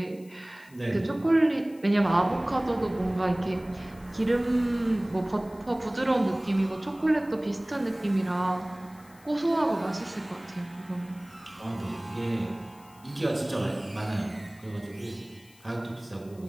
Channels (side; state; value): left; noise; hiss, 26 dB below the sound